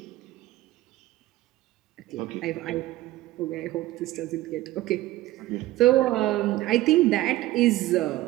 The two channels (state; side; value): quieter; left; 16.5 dB